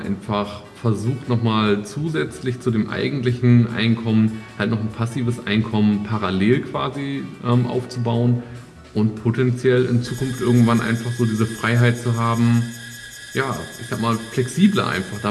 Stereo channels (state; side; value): identical; both; correlation 1.00